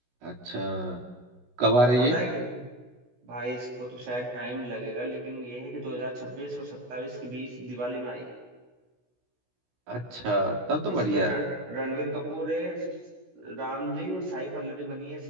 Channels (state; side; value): late; left; 16 ms